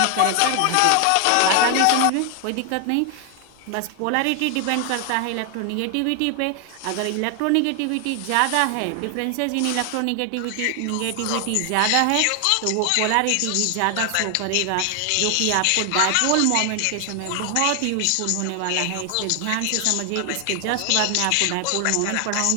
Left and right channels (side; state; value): both; different; correlation 0.00